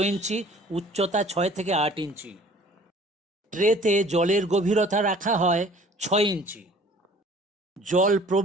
ইঞ্চি, উচ্চতা 6 থেকে 8 ইঞ্চি। ট্রেতে জলের গভীরতা রাখা হয় 6 ইঞ্চি। জল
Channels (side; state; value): both; normal; correlation 0.51